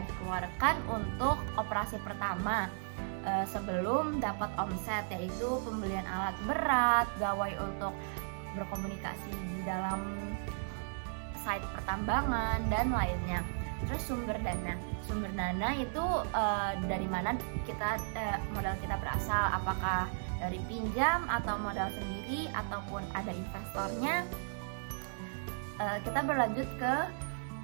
dikeluarkan untuk operasi pertama sebelum dapat omset, yaitu pembelian alat berat, gawai untuk berkomunikasi di dalam site pertambangan, dan lainnya. Terus sumber dana itu dari mana modal kita berasal, apakah dari pinjam atau modal sendiri ataupun ada investornya. Kita berlanjut ke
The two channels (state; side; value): silent; left; 54 dB below the other